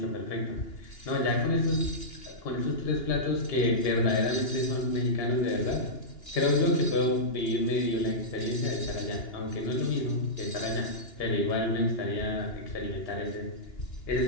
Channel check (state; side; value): late; right; 2.9 ms